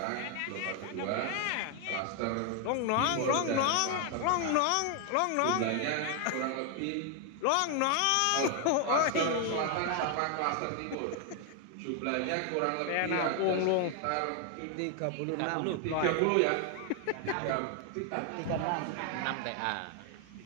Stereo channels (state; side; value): different; both; correlation 0.01